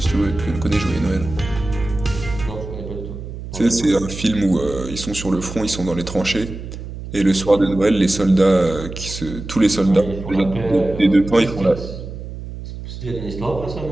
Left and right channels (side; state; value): right; noise; hum, 10 dB below the sound